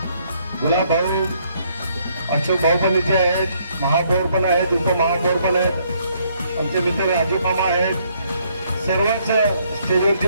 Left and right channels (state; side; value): inverted; both; correlation -0.69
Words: गुलाब भाऊ, अशोक भाऊ पण इथे आहेत, महापौर पण आहेत, उपमहापौर पण आहेत, आमचे मित्र राजू मामा आहेत, सर्वच स्टेजवरची